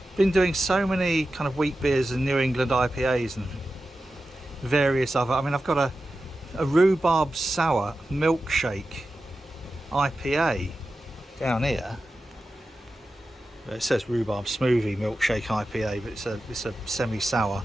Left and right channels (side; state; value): both; normal; correlation 0.92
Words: Been doing so many kind of wheat beers and New England IPAs and various other, I mean, I've got a rhubarb sour milkshake IPA down here. It says rhubarb smoothie milkshake IPA, but it's a semi-sour